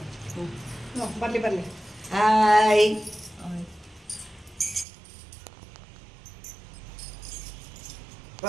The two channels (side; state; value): left; drops out; at 4.9 s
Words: ಬರ್ಲಿ ಬರ್ಲಿ. ಹಾಯ್.